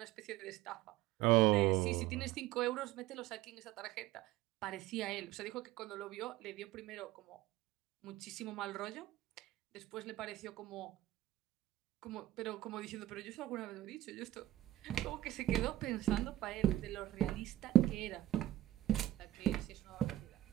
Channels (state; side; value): quieter; left; 14.6 dB